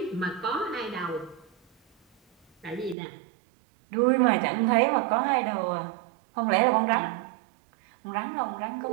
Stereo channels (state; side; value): drops out; left; at 3.0 s